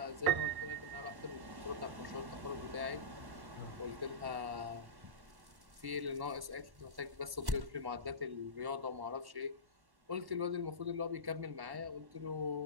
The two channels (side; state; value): left; late; 1.1 ms